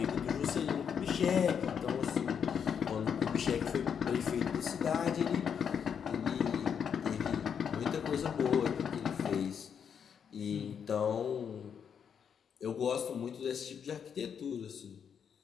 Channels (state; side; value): quieter; right; 7.5 dB